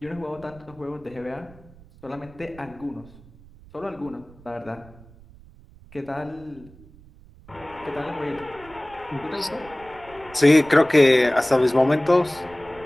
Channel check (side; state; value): right; noise; rumble, 23 dB below the sound